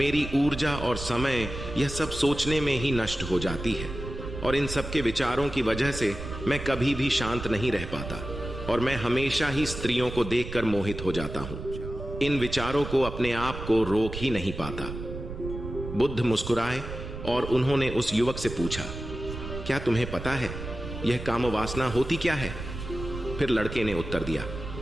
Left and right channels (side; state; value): right; noise; rumble, 8 dB below the sound